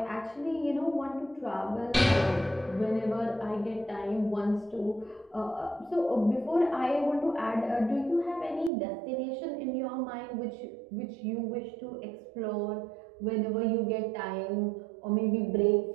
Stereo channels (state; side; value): drops out; left; at 8.7 s